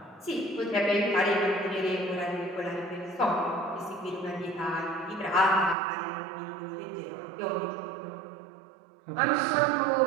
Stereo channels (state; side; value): drops out; left; at 5.8 s